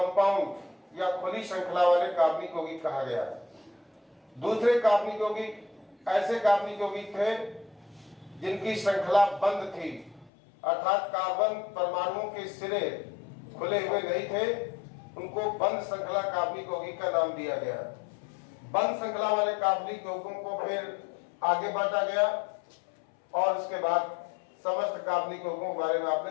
या खुली श्रृंखला वाले कार्बनिक यौगिक कहा गया। दूसरे कार्बनिक यौगिक ऐसे कार्बनिक यौगिक थे जिनकी श्रृंखला बंद थी, अर्थात कार्बन परमाणुओं के सिरे खुले हुए नहीं थे, उनको बंद श्रृंखला कार्बनिक यौगिक का नाम दिया गया। बंद श्रृंखला वाले कार्बनिक यौगिकों को फिर आगे बांटा गया और उसके बाद समस्त कार्बनिक यौगिकों के बारे में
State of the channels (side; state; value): right; drops out; at 10.3 s